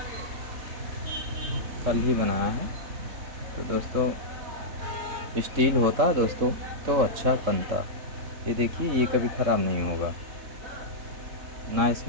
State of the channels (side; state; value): left; late; 3.7 ms